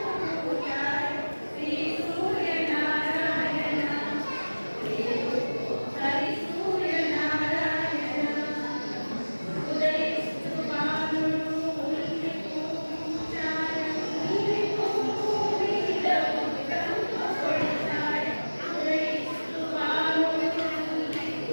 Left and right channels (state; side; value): inverted; both; correlation -1.00